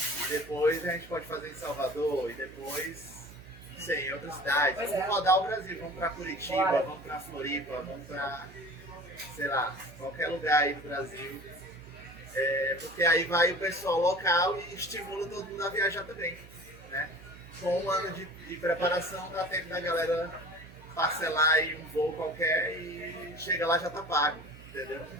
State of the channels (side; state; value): right; noise; hum, 19 dB below the sound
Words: depois a gente pode fazer em Salvador e depois, não sei, em outras cidades. Vamos rodar o Brasil, vamos para Curitiba, vamos para Floripa, vamos para, sei lá, qualquer lugar aí do Brasil. Porque aí vai o pessoal local e estimula todo mundo a viajar também, né? Com um ano de preparação, dá tempo da galera parcelar aí um voo qualquer e chega lá já tá pago, entendeu?